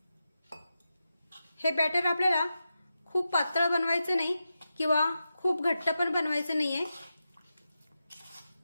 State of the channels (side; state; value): both; inverted; correlation -0.90